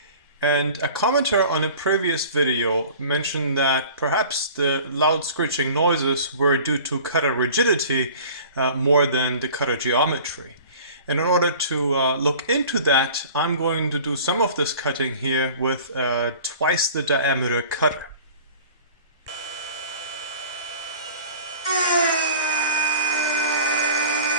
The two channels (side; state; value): both; inverted; correlation -0.44